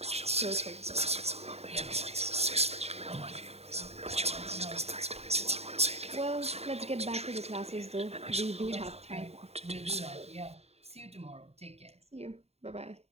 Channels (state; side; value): late; left; 0.30 ms